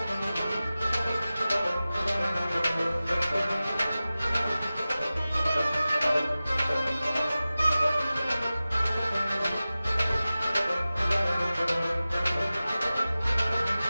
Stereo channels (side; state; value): both; inverted; correlation -0.96